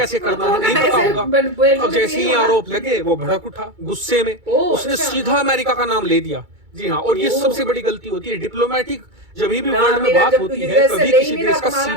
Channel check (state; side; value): late; left; 2.2 ms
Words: करना है नहीं पता होगा। अब जैसे ही आरोप लगे वो भड़क उठा गुस्से में, उसने सीधा अमेरिका का नाम ले दिया। जी हाँ, और ये सबसे बड़ी गलती होती है डिप्लोमेटिक, जब भी वर्ल्ड में बात होती है कभी किसी देश का